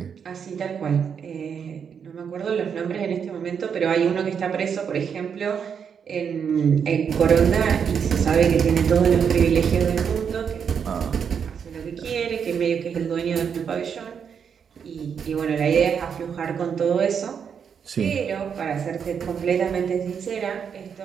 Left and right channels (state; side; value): quieter; left; 7.1 dB